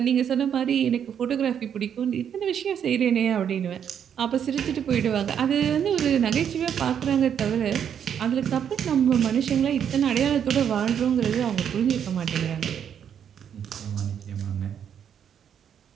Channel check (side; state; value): left; quieter; 8.5 dB